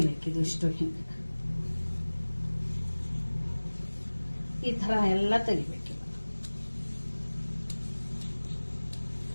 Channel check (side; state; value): both; inverted; correlation -1.00